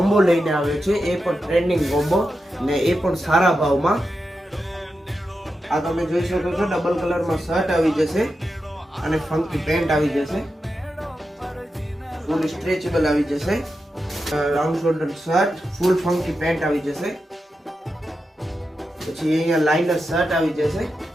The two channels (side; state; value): both; normal; correlation 0.89